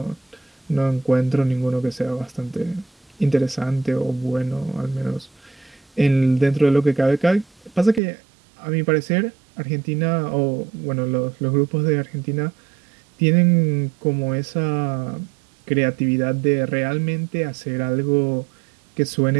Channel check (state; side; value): drops out; left; at 8.0 s